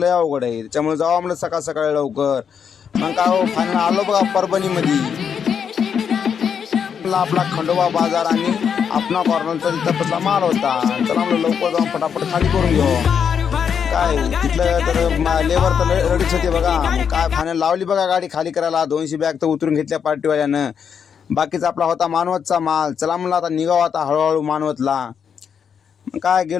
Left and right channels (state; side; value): quieter; right; 7.3 dB